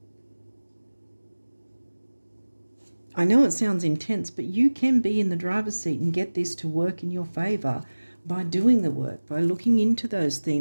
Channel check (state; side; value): inverted; both; correlation -1.00